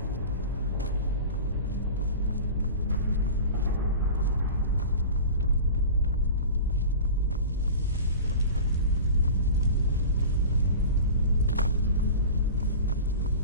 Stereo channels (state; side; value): inverted; both; correlation -0.35